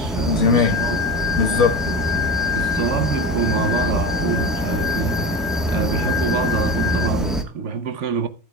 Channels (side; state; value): both; normal; correlation 0.27